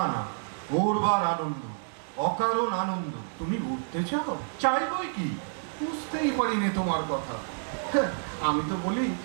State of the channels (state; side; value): silent; left; digital silence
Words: না, ওরবার আনন্দ, অকারণ আনন্দ। তুমি উঠতে চাও? চাইবই কি? বুঝতেই পারিনি তোমার কথা। হ্যাঁ, আমি তো বলি